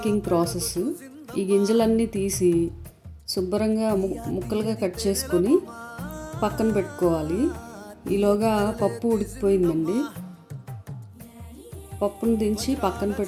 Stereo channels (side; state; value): both; identical; correlation 1.00